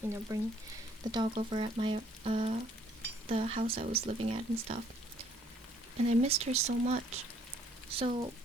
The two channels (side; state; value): both; normal; correlation 0.64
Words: bring the dog over at my, the house I was living at and stuff. And I missed her so much. So